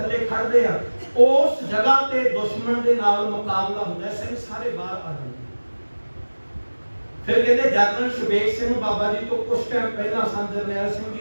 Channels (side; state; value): both; inverted; correlation -1.00